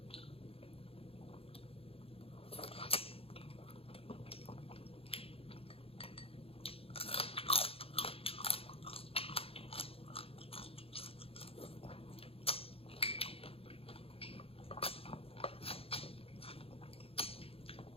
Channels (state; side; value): late; right; 0.27 ms